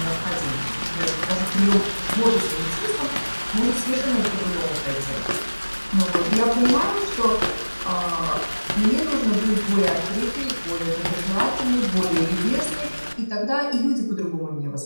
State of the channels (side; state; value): both; inverted; correlation -1.00